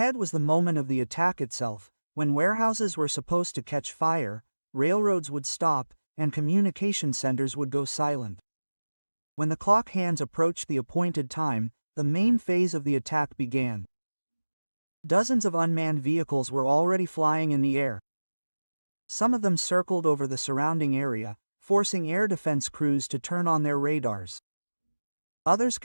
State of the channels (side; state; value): both; inverted; correlation -1.00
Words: was the moment of the attack itself, when warehouses were supposed to catch fire, railroads would stop, and communication centers would go silent. When the clock hands approached the appointed time, the main phase of the attack began. Dozens of unmanned vehicles were already flying in the air. Some of them circled over the surrounding area, forcing air defense crews to turn on their radars. Others